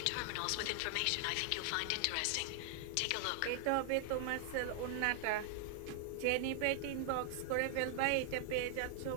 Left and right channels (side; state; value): both; different; correlation 0.00